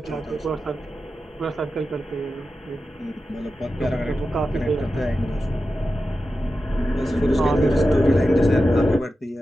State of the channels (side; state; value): both; normal; correlation 0.91